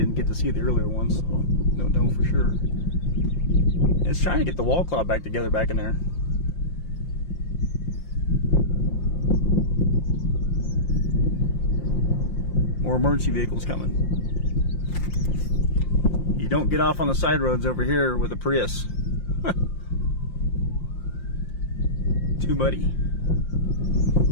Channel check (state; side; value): late; right; 5.7 ms